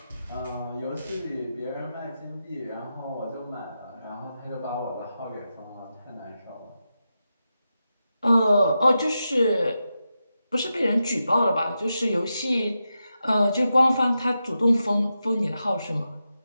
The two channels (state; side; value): inverted; both; correlation -0.89